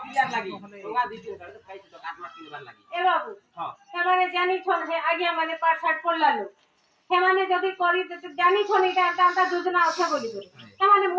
क्लियर लागी गंगा दीदी कर तो खाई तो काटमा किनबार लागी ए बाबू हां हेमाने जानी छन हे आगे माने पाठ साठ पड़लालो हेमाने जदी करी तो जानी छन एटा तांता योजना আছে বলি করে हेमाने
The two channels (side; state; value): both; identical; correlation 1.00